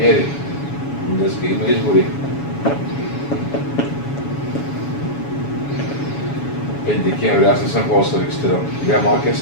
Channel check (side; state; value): right; late; 7.1 ms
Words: Днеска има избори. Декември, аз не съм хубаво се регистрирал. Сега малкия